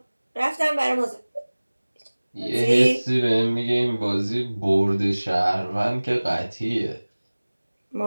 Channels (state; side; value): inverted; both; correlation -1.00